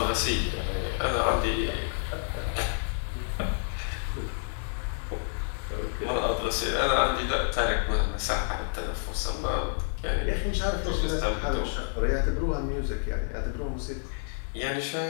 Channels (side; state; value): right; silent; 59 dB below the other